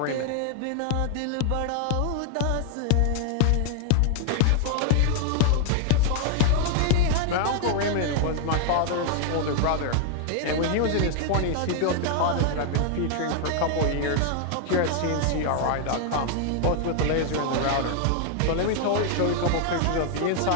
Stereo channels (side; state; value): both; different; correlation 0.00